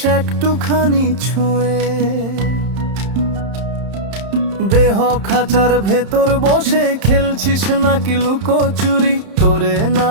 একটুখানি ছুঁয়ে। দেহ খাঁচার ভেতর বসে খেলছিস নাকি লুকোচুরি? তোরে না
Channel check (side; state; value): left; late; 31 ms